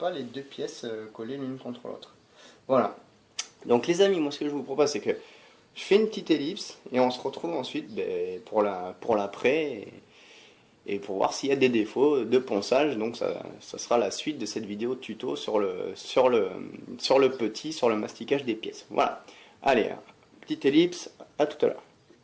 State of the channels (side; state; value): both; identical; correlation 1.00